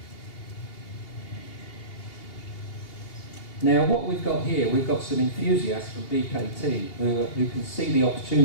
Now what we've got here, we've got some enthusiasts from BKT who can see the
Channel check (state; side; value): late; right; 2.8 ms